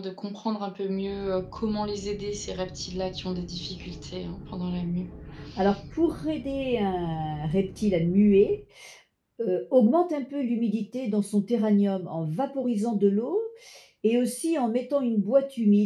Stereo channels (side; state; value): both; identical; correlation 1.00